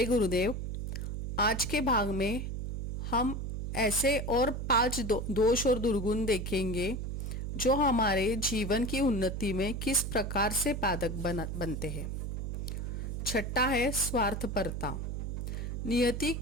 गुरुदेव। आज के भाग में हम ऐसे और 5 दोष और दुर्गुण देखेंगे जो हमारे जीवन की उन्नति में किस प्रकार से बाधक बनते हैं। छठा है स्वार्थपरता। नियति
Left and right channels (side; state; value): right; noise; hum, 4 dB below the sound